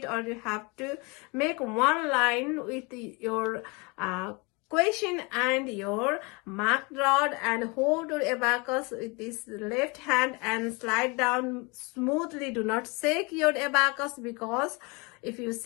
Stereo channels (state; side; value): quieter; right; 28.6 dB